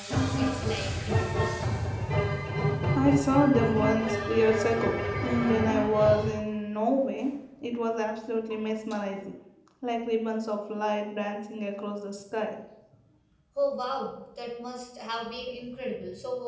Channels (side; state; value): both; identical; correlation 1.00